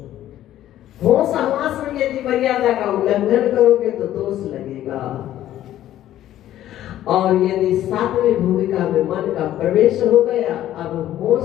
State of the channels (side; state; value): right; quieter; 12.8 dB